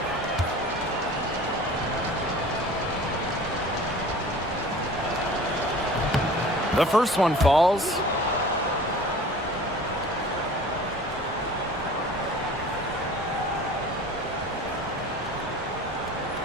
The first one falls.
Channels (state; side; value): normal; both; correlation 0.43